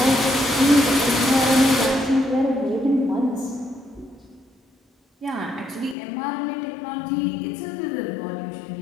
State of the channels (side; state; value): right; drops out; at 6.0 s